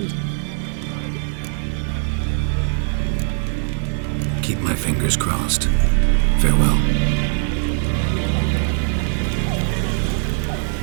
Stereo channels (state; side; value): silent; left; 65 dB below the other